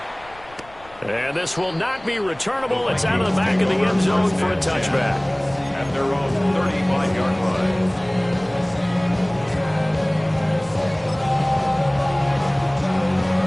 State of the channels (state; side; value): noise; left; rumble, 25 dB below the sound